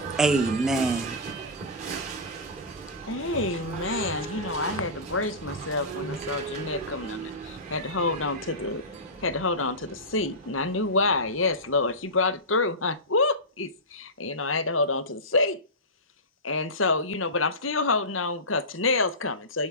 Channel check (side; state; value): both; normal; correlation -0.18